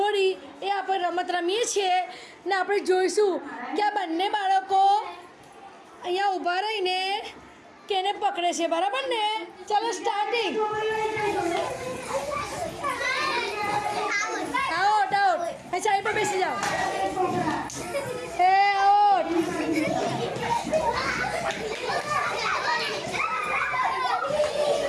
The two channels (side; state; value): both; identical; correlation 1.00